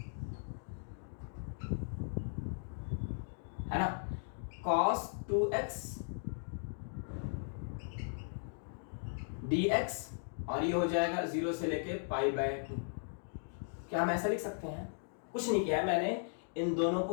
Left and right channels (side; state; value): right; silent; digital silence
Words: है ना, cos 2x dx और ये हो जाएगा 0 से लेके पाई बाय 2। क्या हम ऐसा लिख सकते हैं? कुछ नहीं किया है मैंने, इन दोनों